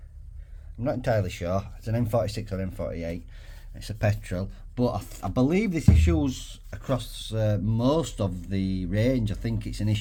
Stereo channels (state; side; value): identical; both; correlation 1.00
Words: I'm not entirely sure. It's an N46 or N48. It's a petrol, but I believe this issues across most of the range. I think it's an